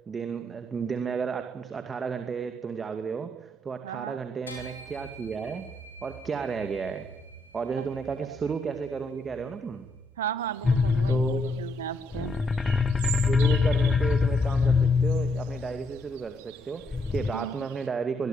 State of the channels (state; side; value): normal; both; correlation 0.75